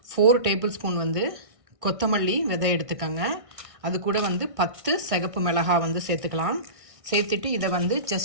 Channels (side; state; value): left; late; 1.6 ms